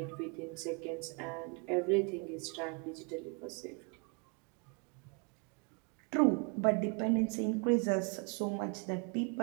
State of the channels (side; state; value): left; quieter; 35.2 dB